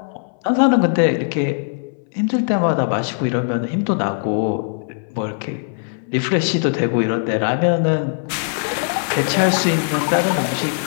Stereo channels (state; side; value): silent; right; 63 dB below the other